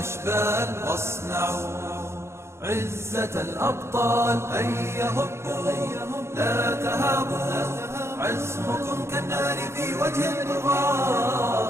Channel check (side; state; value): left; late; 0.13 ms